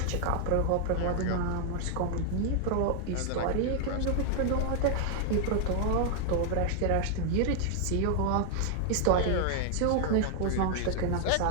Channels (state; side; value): different; both; correlation 0.00